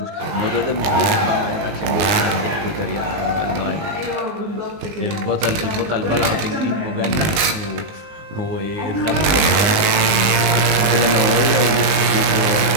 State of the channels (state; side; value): late; left; 19 ms